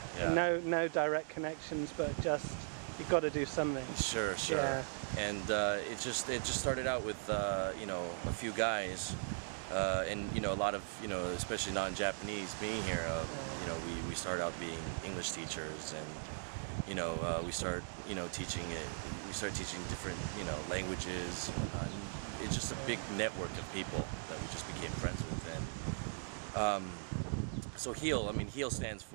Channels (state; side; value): silent; left; digital silence